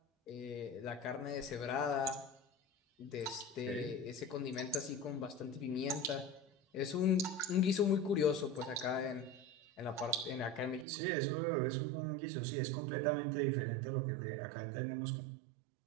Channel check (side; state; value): left; drops out; at 10.9 s